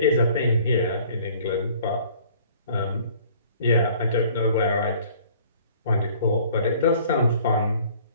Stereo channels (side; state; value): both; inverted; correlation -0.54